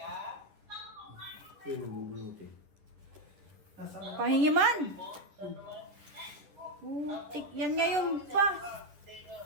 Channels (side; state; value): left; late; 10 ms